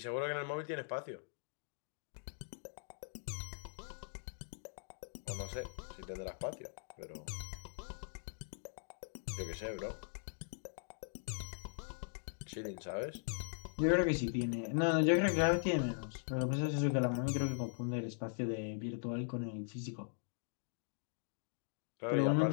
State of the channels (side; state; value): right; silent; digital silence